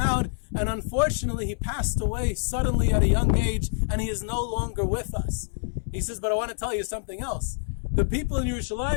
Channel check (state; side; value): silent; right; 61 dB below the other